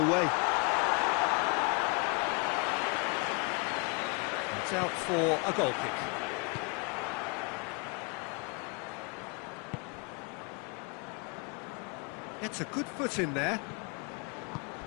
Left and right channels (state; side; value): quieter; right; 33.4 dB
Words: way. It's out for a goal kick. Gets a good foot in there.